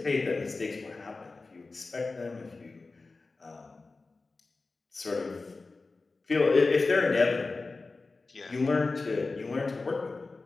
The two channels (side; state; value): right; quieter; 3.7 dB